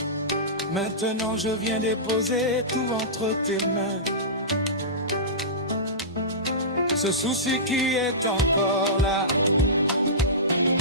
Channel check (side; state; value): both; normal; correlation -0.19